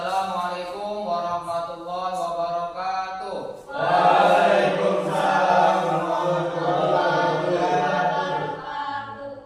warahmatullahi wabarakatuh. Waalaikumsalam warahmatullahi wabarakatuh.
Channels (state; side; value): identical; both; correlation 1.00